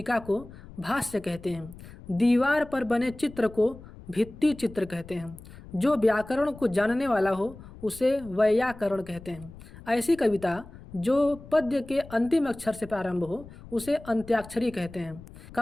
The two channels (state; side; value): noise; left; rumble, 18 dB below the sound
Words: को भाष्य कहते हैं। दीवार पर बने चित्र को भित्ति चित्र कहते हैं। जो व्याकरण को जानने वाला हो उसे वैयाकरण कहते हैं। ऐसी कविता जो पद्य के अंतिम अक्षर से प्रारंभ हो उसे अंत्याक्षरी कहते हैं।